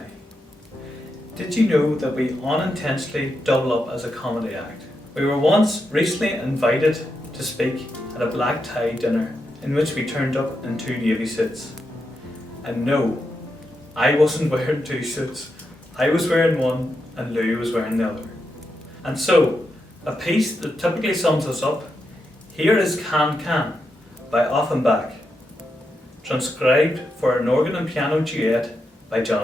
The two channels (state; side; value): normal; both; correlation 0.85